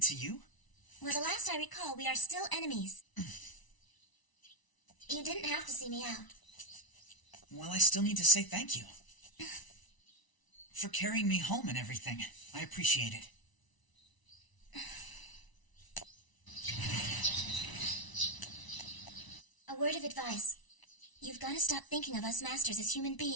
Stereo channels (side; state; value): right; late; 1.0 ms